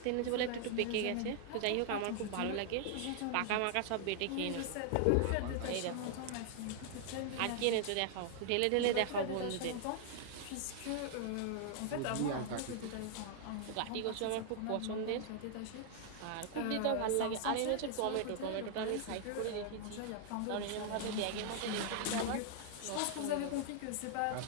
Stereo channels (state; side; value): different; both; correlation -0.01